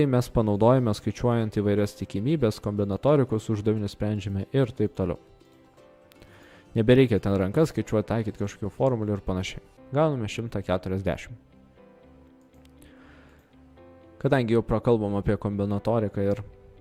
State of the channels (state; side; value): identical; both; correlation 1.00